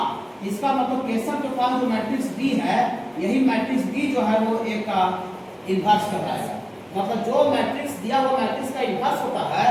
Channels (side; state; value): both; identical; correlation 1.00